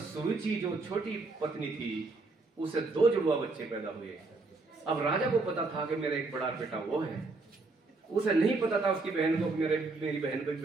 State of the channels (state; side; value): quieter; left; 3.6 dB